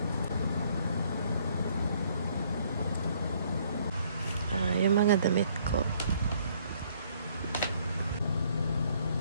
Yung mga damit ko.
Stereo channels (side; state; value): both; inverted; correlation -0.64